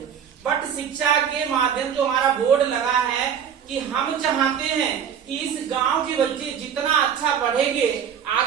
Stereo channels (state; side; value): quieter; left; 8.1 dB